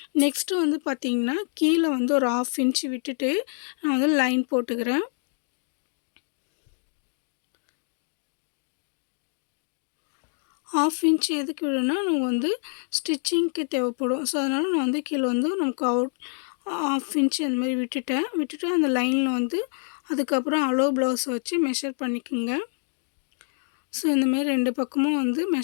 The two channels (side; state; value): right; silent; 56 dB below the other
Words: நெக்ஸ்ட்டு வந்து பார்த்தீங்கன்னா கீழே வந்து ஒரு 1/2 இன்ச் விட்டுட்டு நான் வந்து லைன் போட்டுக்கிறேன். 1/2 இன்ச் எதுக்கு விடணும்னா நம்ம வந்து ஸ்டிச்சிங்க்கு தேவைப்படும். அதனால் நான் வந்து கீழே வந்து நமக்கு 1/2 இன்ச் அந்த மாதிரி விட்டுட்டு அந்த லைனில் வந்து அதுக்கப்புறம் ஹலோ ப்ளவுஸ் வச்சு மெஷர் பண்ணிக்கோங்க. இந்தமாரி 2 பக்கமும் வந்து